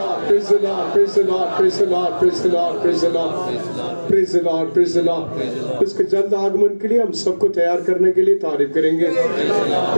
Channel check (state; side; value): inverted; both; correlation -1.00